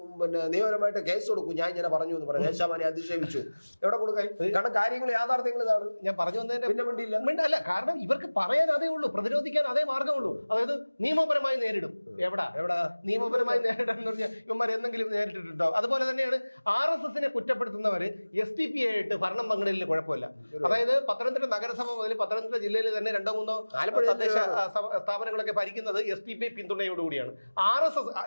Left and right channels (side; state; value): both; inverted; correlation -1.00